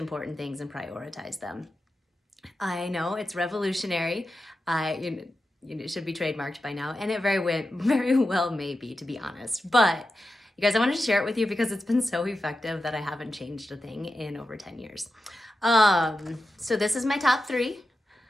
things and prioritize them. I know it's revolutionary. It should be trademarked by now, and it very well may be, to be honest. But you guys, I wanted to share it with you because it's been so effective that I haven't changed a thing in over 10 years. So this is my top three.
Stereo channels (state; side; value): normal; both; correlation 0.90